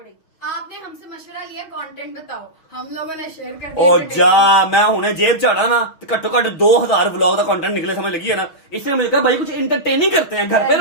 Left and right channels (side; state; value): right; late; 6.3 ms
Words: आपने हमसे मशवरा लिया, कंटेंट बताओ, हम लोगों ने शेयर कर ओ जा मैं हुने जेब चाड़ा ना, तो घट्टो घट 2000 व्लॉग का कंटेंट निकले, समझ लगी है ना। इसने मुझे कहा भाई कुछ इंटरटेनिंग करते हैं, घर पे